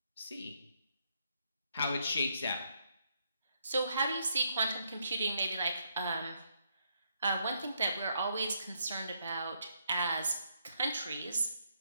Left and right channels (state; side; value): inverted; both; correlation -0.75